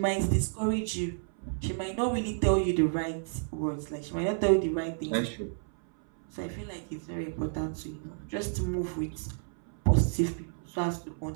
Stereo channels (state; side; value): silent; left; 57 dB below the other